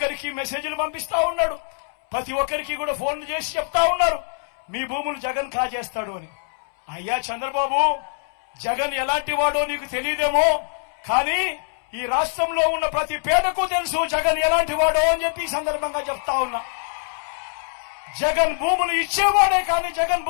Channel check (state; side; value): silent; right; 63 dB below the other